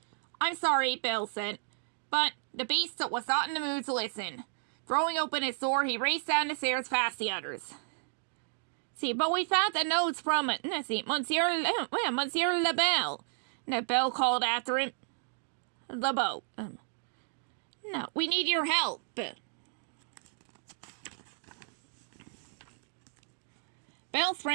I'm sorry, Belle said. But the beast was not in the mood to listen. Throwing open his door, he raced down the stairs past the others. But we found the notes from Monsieur Belle. Belle called after him. LeBeau. No, we need your help. Belle's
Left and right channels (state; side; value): silent; left; digital silence